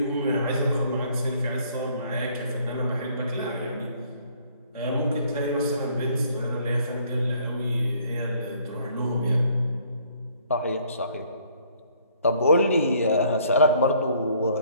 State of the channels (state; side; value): inverted; both; correlation -0.62